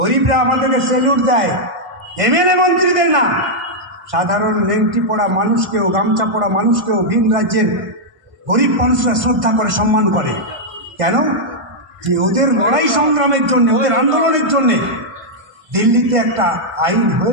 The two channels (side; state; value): left; late; 1.5 ms